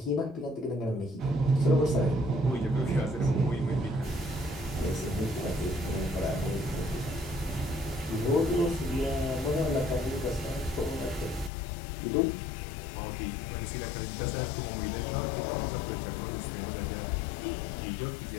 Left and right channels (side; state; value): right; drops out; at 11.5 s